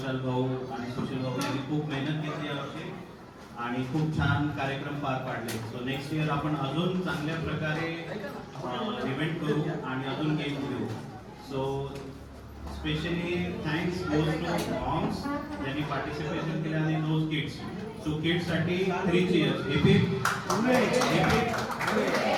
भाऊ आणि सुशील भाऊ यांनी खूप मेहनत घेतली यावर्षी आणि खूप छान कार्यक्रम पार पाडले. सो नेक्स्ट इयर आपण अजून चांगल्या प्रकारे इव्हेंट करू आणि अजून गेम घेऊ. So specially thanks goes to moms ज्यांनी पार्टिसिपेशन केलं आणि दोज किड्स. सो किड्ससाठी 3 cheers. Very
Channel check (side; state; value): both; identical; correlation 1.00